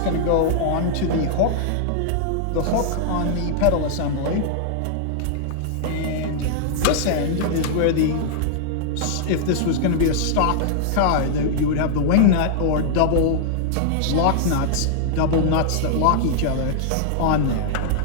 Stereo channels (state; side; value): different; both; correlation -0.01